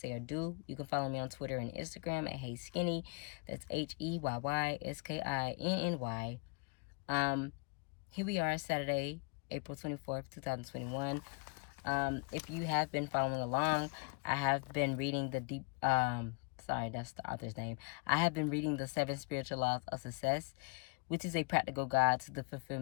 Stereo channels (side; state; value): right; quieter; 31.8 dB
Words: or do. You can follow me on Twitter and Instagram at Hey Skinny. That's HEYYSKINNY. Here we are, Saturday, April 24th, 2021. If you have been following along, I have been reading sorry, that's the author's name. I have been reading the 7 Spiritual Laws of Success, which is a practical guide to the